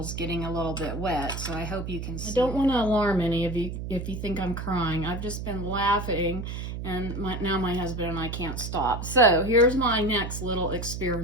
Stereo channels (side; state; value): right; noise; hum, 6 dB below the sound